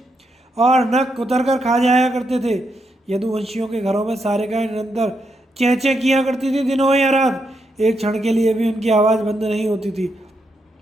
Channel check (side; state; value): both; normal; correlation 0.81